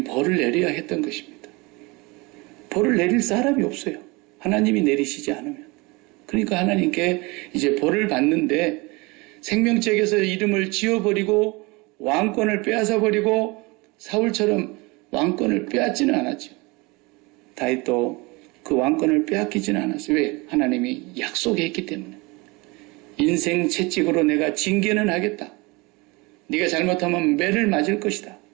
벌을 내려야 했던 것입니다. 벌을 내릴 사람이 없어요. 하나님이 내리시지 않으면. 그러니까 하나님께 이제 벌을 받는데 생명책에서 이름을 지워버리고 왕권을 빼앗아버리고 사울처럼 왕권을 빼앗지는 않았죠. 다윗도 그 왕권을 빼앗기지는 않았어요. 왜? 하나님이 약속했기 때문에. 인생 채찍으로 내가 징계는 하겠다. 네가 잘못하면 매를 맞을 것이다.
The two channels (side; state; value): left; quieter; 25.6 dB